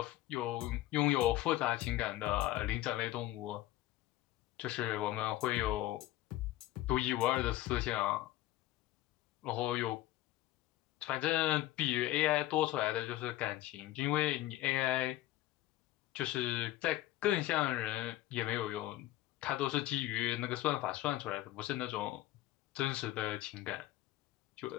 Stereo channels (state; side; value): quieter; right; 15.9 dB